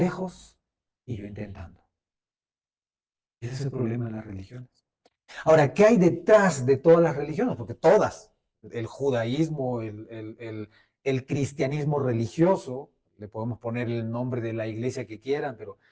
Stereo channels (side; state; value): both; identical; correlation 1.00